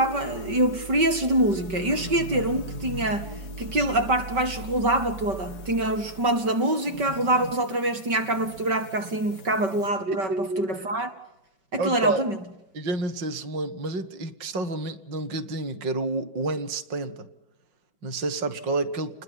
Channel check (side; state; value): left; late; 5.2 ms